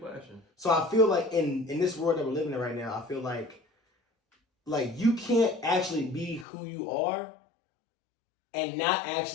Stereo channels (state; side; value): drops out; right; at 6.5 s